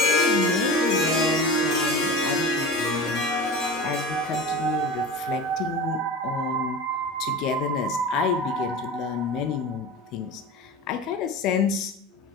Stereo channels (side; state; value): both; normal; correlation 0.32